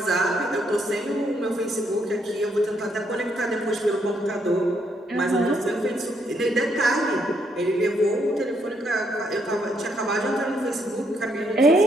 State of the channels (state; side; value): normal; both; correlation 0.74